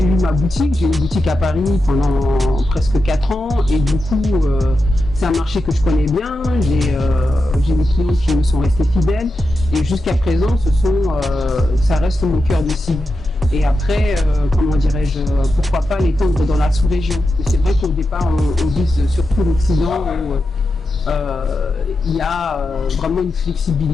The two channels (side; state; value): both; normal; correlation 0.89